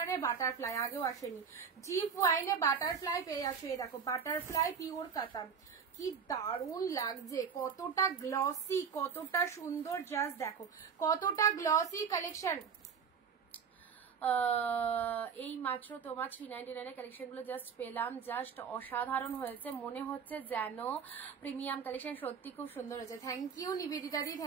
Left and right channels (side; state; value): left; quieter; 6.6 dB